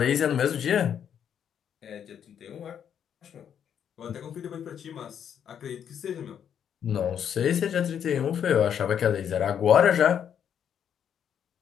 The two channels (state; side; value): quieter; right; 8.7 dB